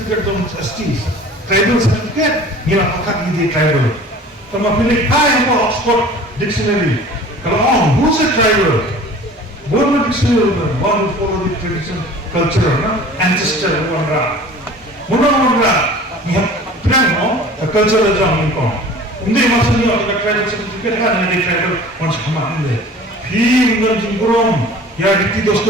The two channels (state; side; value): normal; both; correlation 0.44